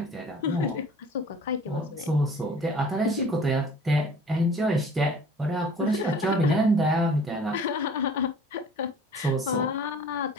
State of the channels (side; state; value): both; normal; correlation 0.48